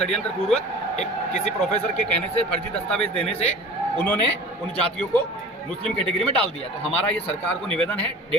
पूर्वक एक किसी प्रोफेसर के कहने से, फर्जी दस्तावेज देने से उन्होंने उन जातियों को मुस्लिम कैटेगरी में डाल दिया। तो हमारा ये सरकार को निवेदन है,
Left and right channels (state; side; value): normal; both; correlation 0.40